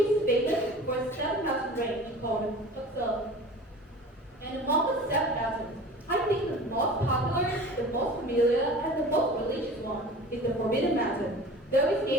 famous for its 7,000 range called Bắc. And among the 7,000, I think the most popular, the most familiar, and the most religious one is the Forbidden Mountain. Though its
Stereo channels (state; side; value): normal; both; correlation 0.40